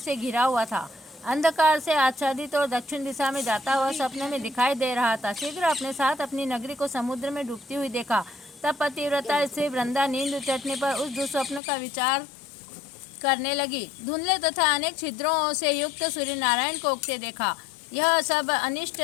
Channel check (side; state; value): right; drops out; at 11.6 s